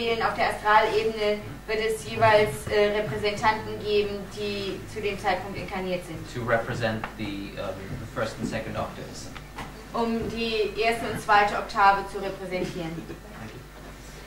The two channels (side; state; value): both; identical; correlation 1.00